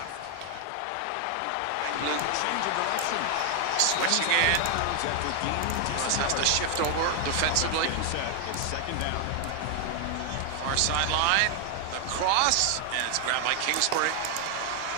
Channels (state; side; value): different; both; correlation 0.00